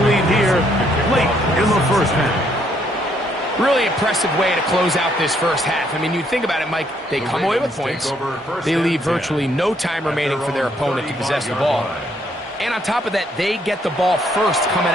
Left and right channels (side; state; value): both; normal; correlation 0.70